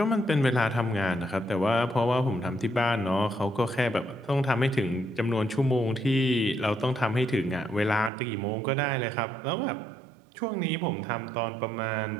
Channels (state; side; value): drops out; left; at 8.1 s